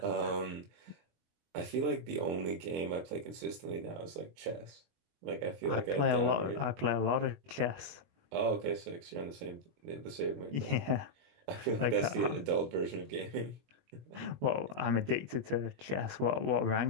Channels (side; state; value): left; late; 23 ms